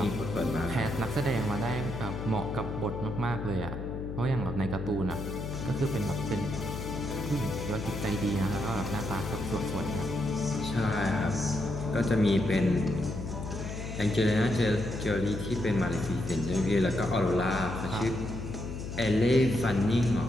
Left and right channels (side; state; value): left; noise; hum, 6 dB below the sound